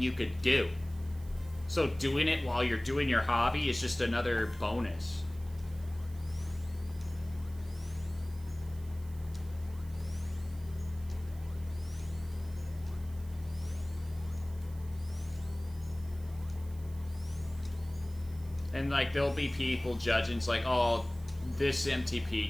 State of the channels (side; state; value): right; noise; hiss, 24 dB below the sound